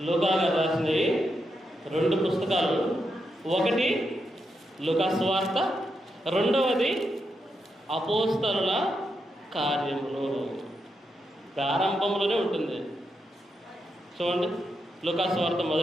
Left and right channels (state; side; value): normal; both; correlation 0.84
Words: లూకా గారు రాసినవి 2 పుస్తకాలు. ఒకటి లూకా సువార్త, 2వది అపోస్తలుల కార్యములు. ప్రారంభంలోనే ఉంటుంది. చూడండి లూకా సువార్త